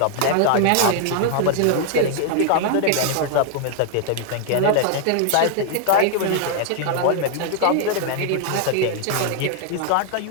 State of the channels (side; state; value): both; different; correlation 0.00